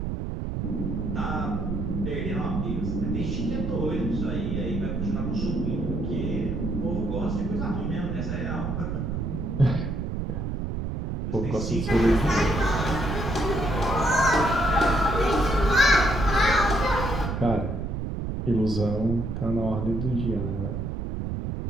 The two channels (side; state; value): right; noise; rumble, 3 dB below the sound